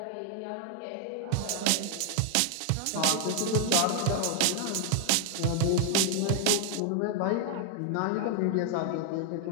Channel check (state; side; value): different; both; correlation 0.00